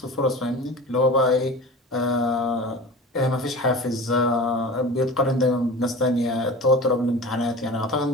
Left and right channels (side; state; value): both; normal; correlation 0.34